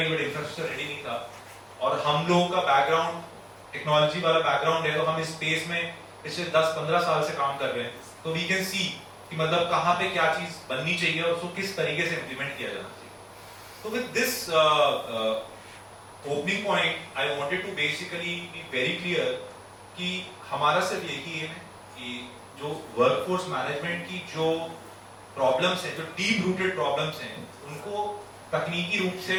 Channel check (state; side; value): identical; both; correlation 1.00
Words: बट इंफ्रास्ट्रक्चर रेडी नहीं था, और हम लोगों का बैकग्राउंड टेक्नोलॉजी वाला बैकग्राउंड है, तो हम इस स्पेस में पिछले 10-15 साल से काम कर रहे हैं, तो वी कैन सी कि मतलब कहां पे क्या चीज बननी चाहिए और उसको किस तरीके से इंप्लीमेंट किया जाना चाहिए। तो with this opening point I wanted to basically be very clear कि हमारा सिर्फ यही है कि जो वर्कफोर्स मैनेजमेंट की जो प्रॉब्लम्स हैं, जो डीप रूटेड प्रॉब्लम्स हैं, उनको तकनीकी रूप से